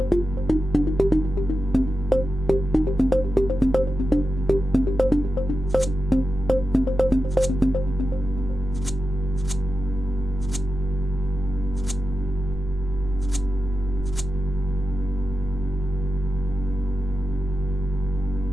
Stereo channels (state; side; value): normal; both; correlation 0.90